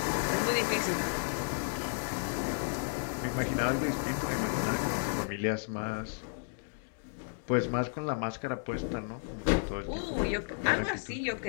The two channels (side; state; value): right; silent; digital silence